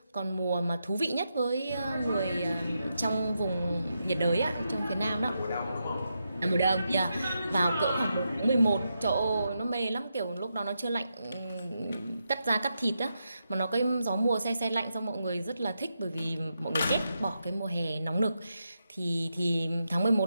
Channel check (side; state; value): both; inverted; correlation -0.85